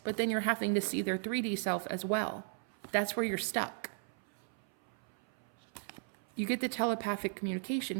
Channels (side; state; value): left; silent; 54 dB below the other